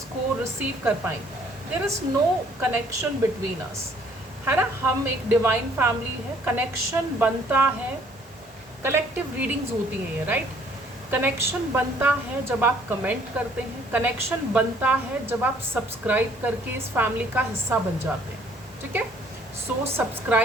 को रिसीव कर पाएंगे। There is no connection between us, है ना। हम एक डिवाइन फैमिली है, कनेक्शन बनता है, कलेक्टिव रीडिंग्स होती हैं ये, राइट। कनेक्शन बनता है जब आप कमेंट करते हैं, कनेक्शन बनता है जब आप सब्सक्राइब करके इस फैमिली का हिस्सा बन जाते हैं, ठीक है। सो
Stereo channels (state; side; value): normal; both; correlation 0.60